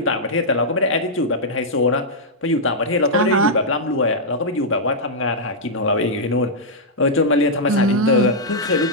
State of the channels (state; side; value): normal; both; correlation -0.08